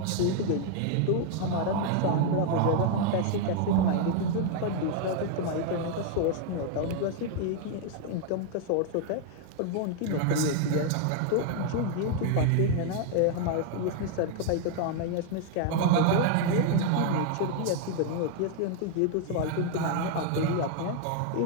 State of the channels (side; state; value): both; different; correlation 0.00